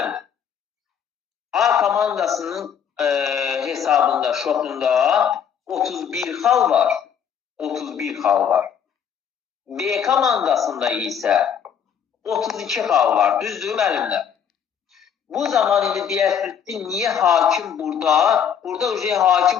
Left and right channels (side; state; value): right; quieter; 8.1 dB